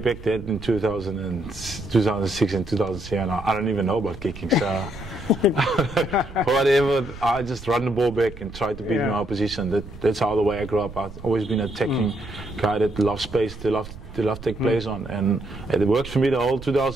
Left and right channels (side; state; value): right; noise; rumble, 14 dB below the sound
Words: there in 2006 and 2007, I don't even know about kicking. So whatever, I just run the ball back and try to beat my opposition. That's how the way I grew up. I've always been an attacking guy that loves space, they love take plays on, and it worked for me the whole